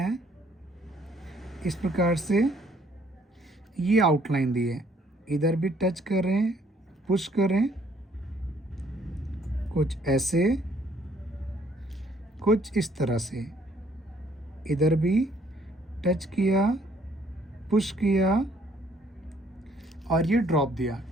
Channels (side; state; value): both; normal; correlation 0.64